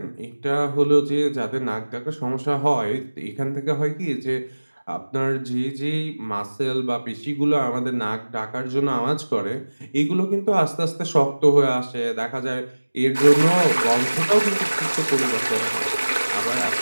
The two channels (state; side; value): inverted; both; correlation -1.00